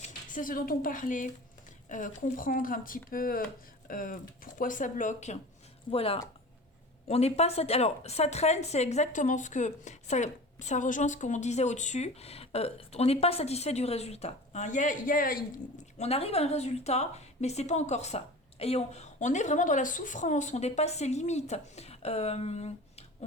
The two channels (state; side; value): normal; both; correlation 0.37